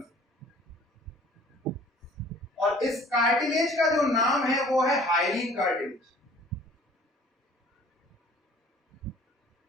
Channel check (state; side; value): normal; both; correlation 0.51